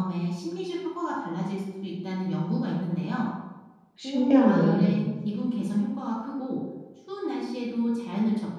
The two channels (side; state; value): both; identical; correlation 1.00